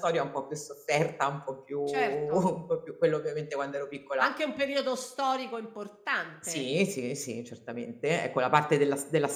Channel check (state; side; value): identical; both; correlation 1.00